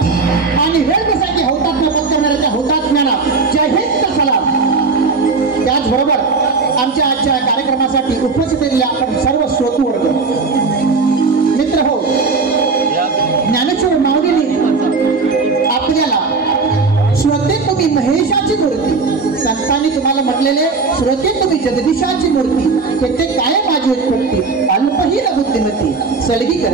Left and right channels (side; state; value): left; quieter; 4.3 dB